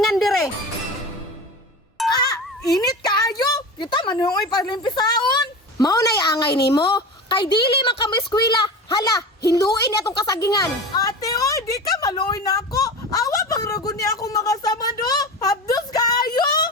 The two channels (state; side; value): normal; both; correlation 0.29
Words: dire. Init kaayo. Kita manuoy palimpisaon. Mao nay angay nimo. Kay dili man ka mo eskwela. Hala, hiluin niya tong kasagingan. Ate, oy, di ka maluoy na ako. Awa pang ragon niya akong makasama do. Habdos kaayo.